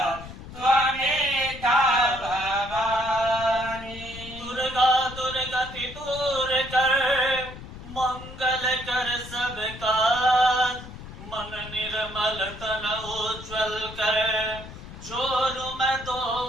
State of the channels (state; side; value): noise; left; rumble, 13 dB below the sound